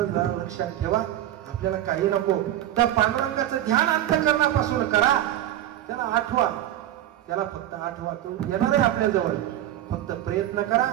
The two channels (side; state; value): left; quieter; 12.6 dB